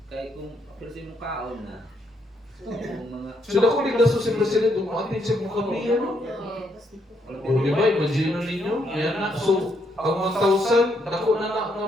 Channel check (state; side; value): normal; both; correlation 0.75